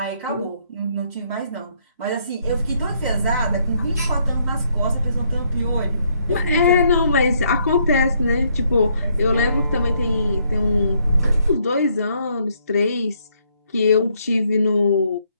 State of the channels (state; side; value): inverted; both; correlation -0.71